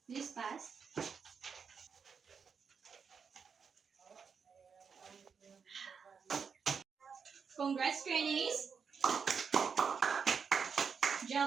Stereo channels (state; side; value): quieter; left; 6.2 dB